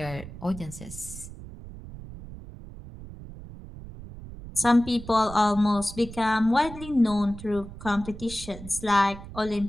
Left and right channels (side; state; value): right; noise; rumble, 14 dB below the sound